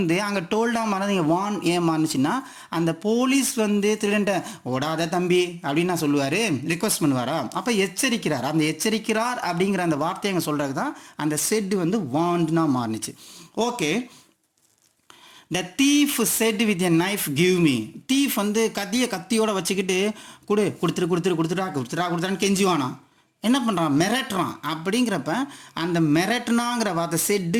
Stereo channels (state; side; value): identical; both; correlation 1.00